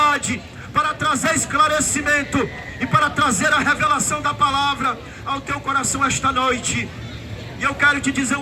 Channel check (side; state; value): both; identical; correlation 1.00